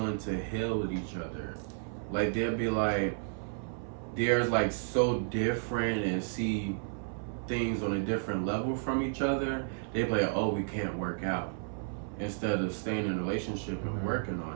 to heal with each other. Like they'll be like they're like so different and see things on a different level from each other. They be like, oh, we can't work out, instead of staying in a relationship and working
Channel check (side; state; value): left; silent; 56 dB below the other